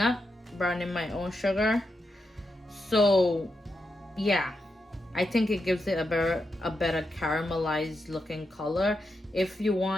browning my own sugar. So yeah, I think it gives it a better caramelized looking color. If you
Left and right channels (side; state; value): both; normal; correlation 0.85